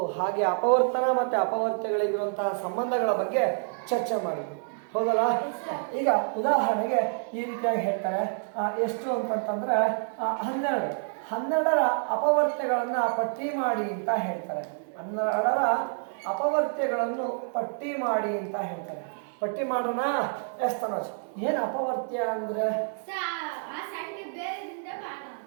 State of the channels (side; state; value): left; silent; digital silence